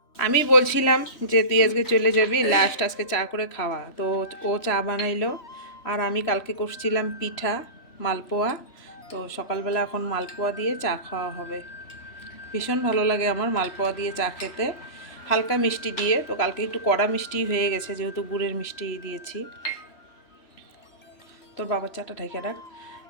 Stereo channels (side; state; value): right; late; 3.0 ms